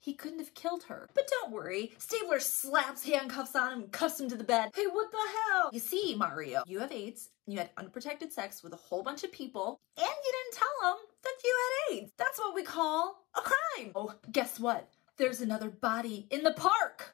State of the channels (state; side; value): quieter; right; 22.1 dB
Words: couldn't have killed her. But don't worry, Stabler slaps handcuffs on him and cuffs him to the bed. Hey, what the hell? You see, Mario, you have AIDS, and you had unprotected sex with a whole bunch of people, and you didn't tell them that you had AIDS. That's what we call a crime. Oh, guess what? There's another body in the park.